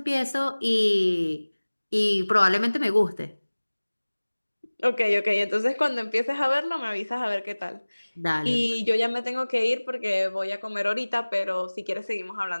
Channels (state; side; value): inverted; both; correlation -1.00